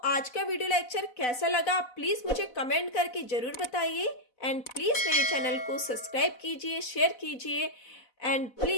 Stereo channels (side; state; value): right; late; 4.0 ms